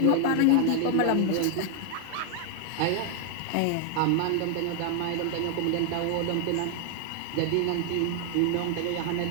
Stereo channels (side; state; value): both; different; correlation 0.00